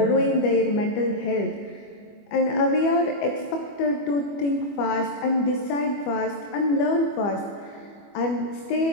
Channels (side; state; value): right; late; 25 ms